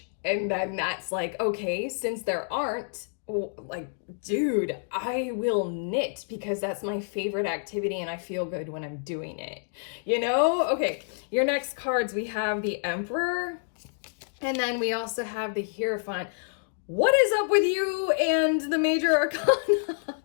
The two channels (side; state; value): right; silent; digital silence